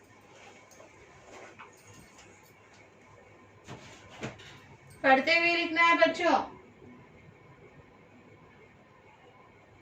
पढ़ते हुए लिखना है बच्चों।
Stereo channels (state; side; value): identical; both; correlation 1.00